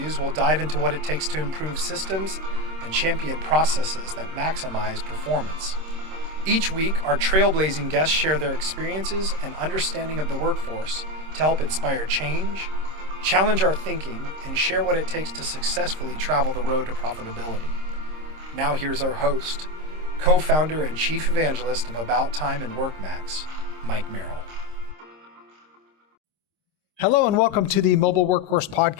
we'll dive into what it takes to improve systems and champion processes that maximize performance. Each week, our trailblazing guests share their experiences and understanding of the workforce to help inspire change, challenge our thinking, and share what it takes to successfully travel the road to profitability. Now here's our host, co-founder and chief evangelist of About Time and WorkMax, Mike Merrill. Hello and welcome to the Mobile Workforce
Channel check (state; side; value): late; left; 26 ms